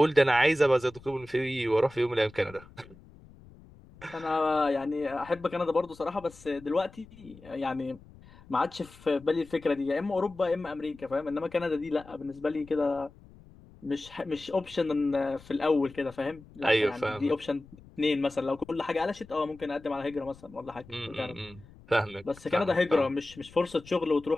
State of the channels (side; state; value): left; noise; rumble, 22 dB below the sound